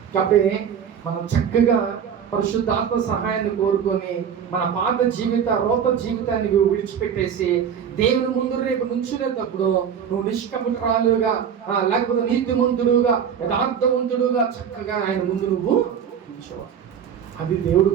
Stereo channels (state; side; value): quieter; left; 7.9 dB